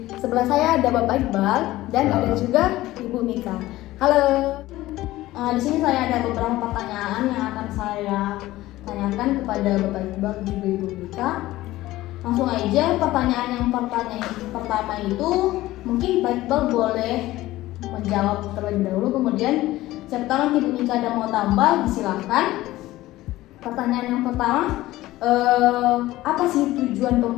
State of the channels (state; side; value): quieter; right; 16.7 dB